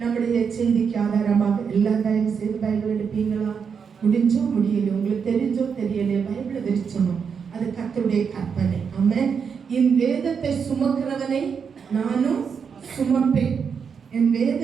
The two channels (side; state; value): left; quieter; 6.4 dB